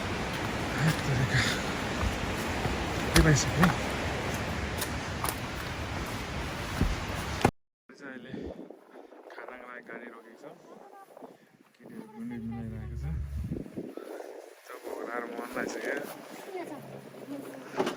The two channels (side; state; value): both; identical; correlation 1.00